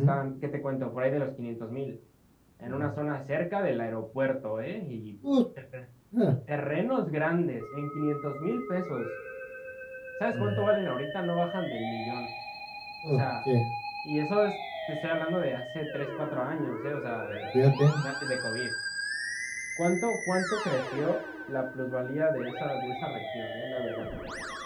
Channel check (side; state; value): both; identical; correlation 1.00